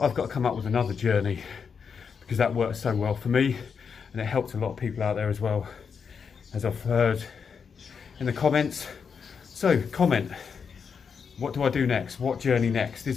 got to come up with another journey because that worked so well for me and it helped a lot of people out there as well, as I've heard in the comments. So comment, what do I do next? What journey next? Is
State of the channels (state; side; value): quieter; right; 6.3 dB